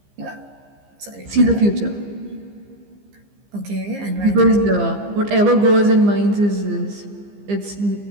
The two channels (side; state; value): left; late; 15 ms